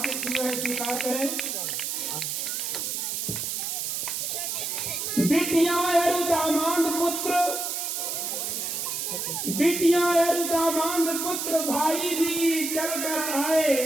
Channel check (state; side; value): noise; right; hiss, 2 dB below the sound